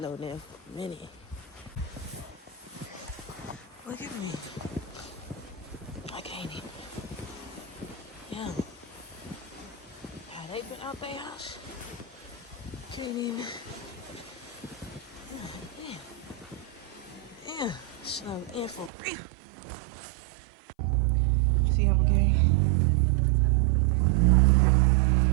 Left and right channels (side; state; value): left; drops out; at 18.9 s